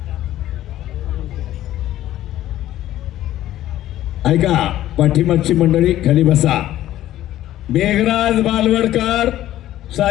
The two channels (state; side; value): quieter; right; 13.5 dB